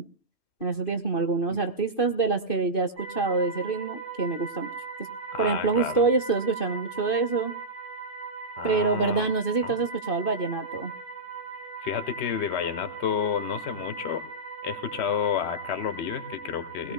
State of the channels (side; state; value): right; late; 2.5 ms